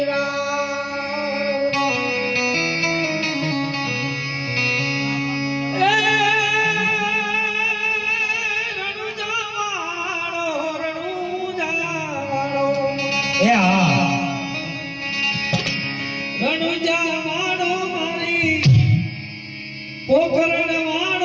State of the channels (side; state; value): both; identical; correlation 1.00